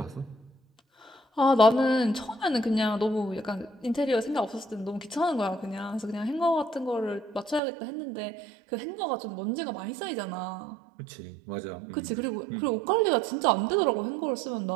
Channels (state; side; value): drops out; left; at 7.6 s